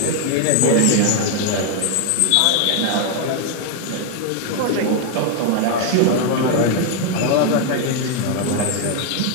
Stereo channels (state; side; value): different; both; correlation 0.01